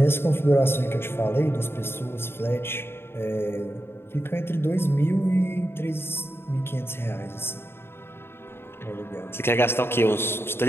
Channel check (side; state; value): right; late; 0.11 ms